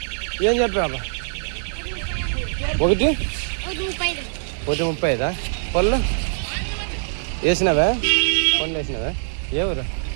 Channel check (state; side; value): silent; left; digital silence